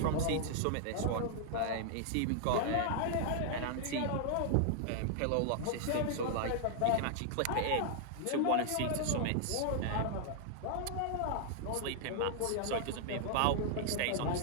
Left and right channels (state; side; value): different; both; correlation -0.01